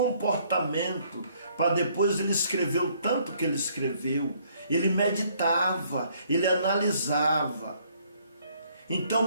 para depois ele escrever o tanto que ele escreveu. Ele meditava, ele analisava. Então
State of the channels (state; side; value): inverted; both; correlation -0.65